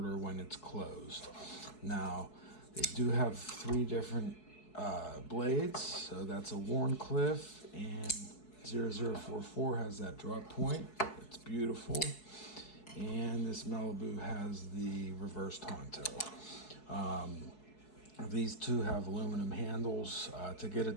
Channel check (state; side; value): late; right; 4.7 ms